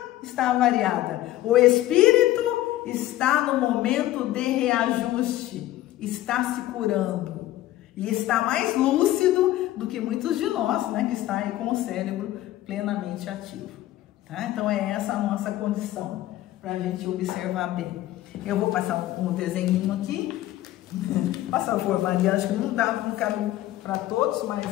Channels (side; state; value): right; quieter; 14.8 dB